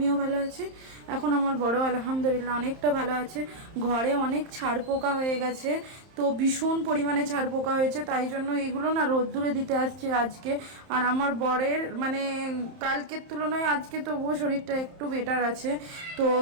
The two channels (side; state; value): left; late; 31 ms